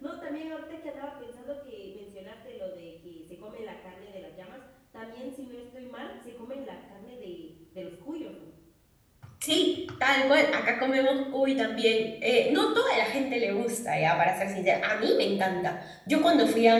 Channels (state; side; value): identical; both; correlation 1.00